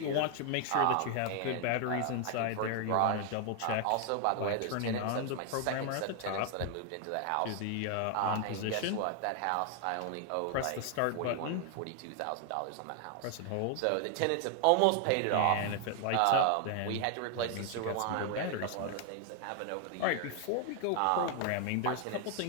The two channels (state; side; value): different; both; correlation 0.00